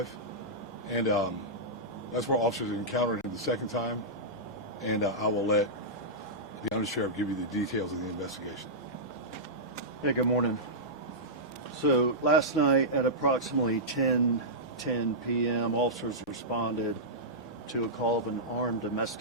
and that's where officers encountered him the second time. And I will let the Undersheriff give you the details of the investigation. Yeah, good morning. So last night at approximately 10:10 p.m., officers responded to a call of an armed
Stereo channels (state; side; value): normal; both; correlation -0.13